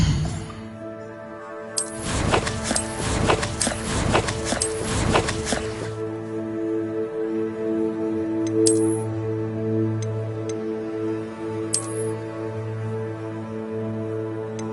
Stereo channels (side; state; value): both; identical; correlation 1.00